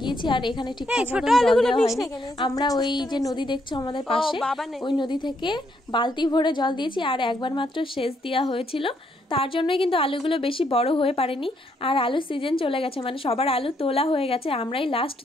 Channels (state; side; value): normal; both; correlation 0.74